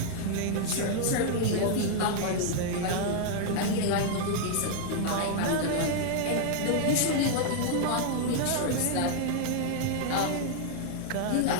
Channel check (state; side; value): different; both; correlation -0.01